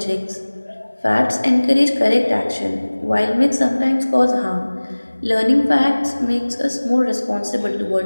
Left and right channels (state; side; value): inverted; both; correlation -1.00